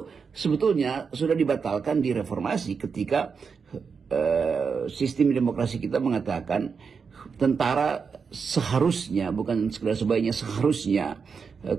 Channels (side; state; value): left; quieter; 5.7 dB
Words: sebetulnya sudah dibatalkan di reformasi ketika sistem demokrasi kita mengatakan tentara seharusnya, bukan sekedar sebaiknya, seharusnya